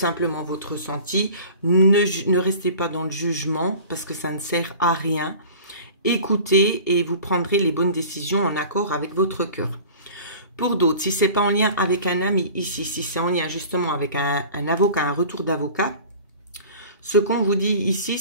votre ressenti, ne restez pas dans le jugement parce que ça ne sert à rien. Écoutez et vous prendrez les bonnes décisions en accord avec votre cœur. Pour d'autres, si ce n'est pas en lien avec un ami ici, si c'est en lien justement avec un avocat, un retour d'avocat, ce qu'on vous dit ici,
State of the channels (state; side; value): inverted; both; correlation -0.42